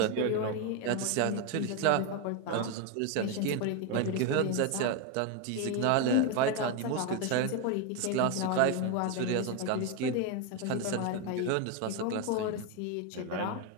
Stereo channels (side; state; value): both; different; correlation 0.02